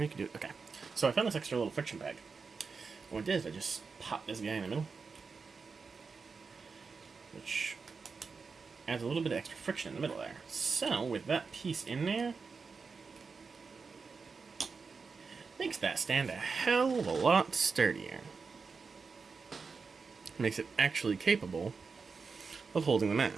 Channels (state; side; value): quieter; left; 4.9 dB